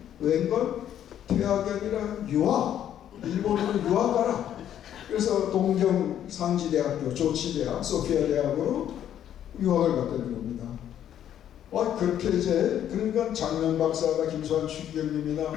웬걸 퇴학이 아니라 유학. 일본으로 유학 가라. 그래서 동경 상지대학교, 조치대학, 소피아 대학으로 유학을 갔다는 겁니다. 그렇게 이제 그러니까 장면 박사가 김수환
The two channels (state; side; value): quieter; right; 10.5 dB